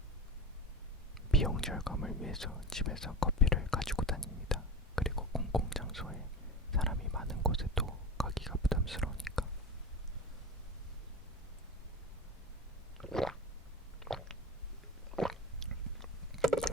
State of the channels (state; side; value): normal; both; correlation 0.29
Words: 비용 절감을 위해서 집에서 커피를 가지고 다닙니다. 그리고 공공장소에 사람이 많은 곳에도 가기가 부담스러우니까.